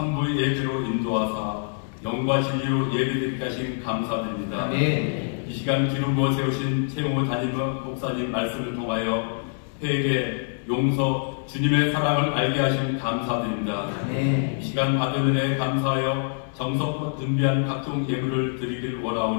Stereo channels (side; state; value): right; silent; digital silence